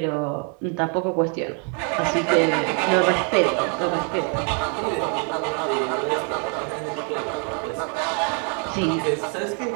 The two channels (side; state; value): left; quieter; 39.8 dB